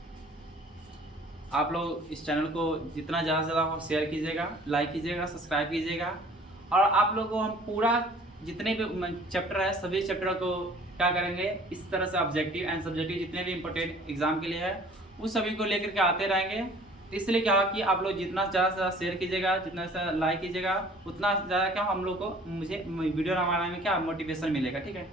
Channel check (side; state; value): both; normal; correlation 0.51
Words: आप लोग इस चैनल को जितना ज़्यादा से ज़्यादा शेयर कीजिएगा, लाइक कीजिएगा, सब्सक्राइब कीजिएगा। और आप लोगों को हम पूरा जितने भी चैप्टर है सभी चैप्टर को क्या करेंगे, इस तरह से ऑब्जेक्टिव एंड सब्जेक्टिव जितने भी इंपॉर्टेंट एग्जाम के लिए है उस सभी को लेकर के आते रहेंगे। इसलिए क्या कि आप लोग जितना ज़्यादा से ज़्यादा शेयर कीजिएगा, जितना ज़्यादा लाइक कीजिएगा, उतना ज़्यादा क्या हम लोग को मुझे वीडियो बनाने में क्या मोटिवेशन मिलेगा। ठीक है,